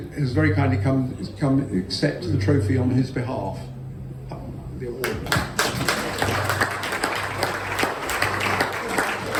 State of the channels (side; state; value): both; identical; correlation 1.00